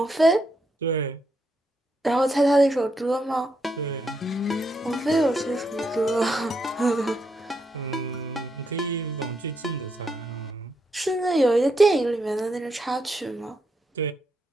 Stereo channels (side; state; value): both; normal; correlation 0.80